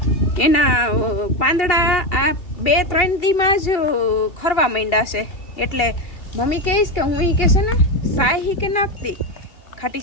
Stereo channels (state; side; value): late; right; 2.8 ms